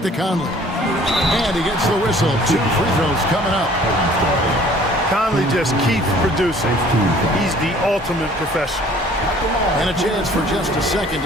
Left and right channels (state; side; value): normal; both; correlation 0.54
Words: to Conley. And he gets the whistle. 2 free throws coming up. Conley just keeps producing. He's the ultimate professional. And a chance for just a second